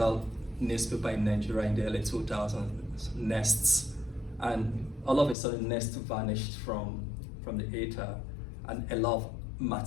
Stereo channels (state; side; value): drops out; right; at 5.4 s